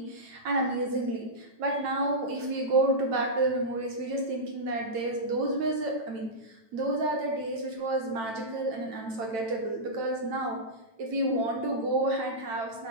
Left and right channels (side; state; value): left; late; 9.0 ms